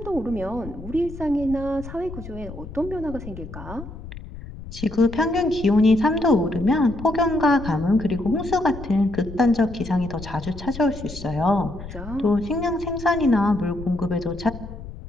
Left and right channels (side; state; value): left; noise; rumble, 12 dB below the sound